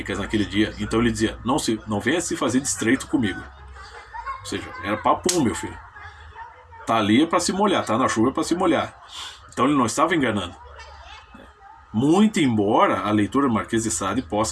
naquele dia. Então ele dizia, não venha se fazer de estreito comigo. Ou seja, era papum, meu filho. Tá ali é para se molhar, tá na chuva é para se molhar. Então ele não estava enganando. Muito embora a leitura do Marquês de Sade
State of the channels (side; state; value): both; identical; correlation 1.00